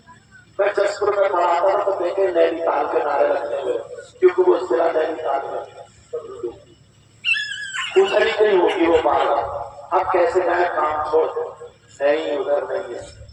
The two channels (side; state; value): both; identical; correlation 1.00